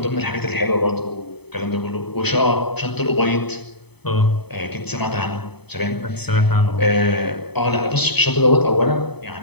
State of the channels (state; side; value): late; right; 0.98 ms